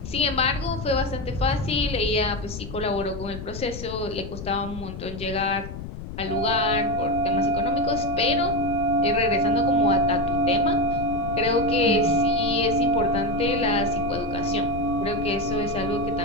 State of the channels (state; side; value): noise; left; rumble, 10 dB below the sound